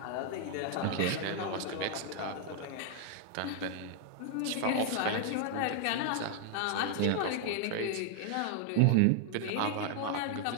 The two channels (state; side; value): different; both; correlation 0.00